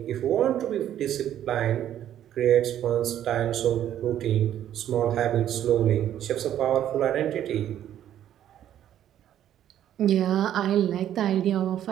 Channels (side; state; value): left; quieter; 11.1 dB